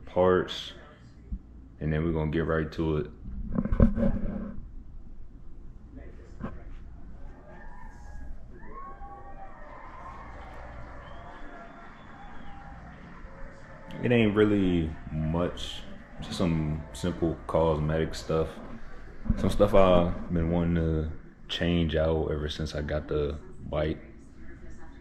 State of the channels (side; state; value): both; identical; correlation 1.00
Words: and then we're gonna get right to it. It ain't really much, just some simple cosmetic stuff. Some stuff I've been wanting to change out ever since I got the bike.